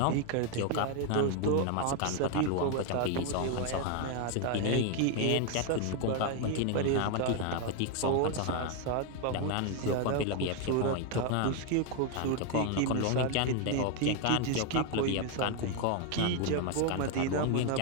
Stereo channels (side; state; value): both; different; correlation 0.01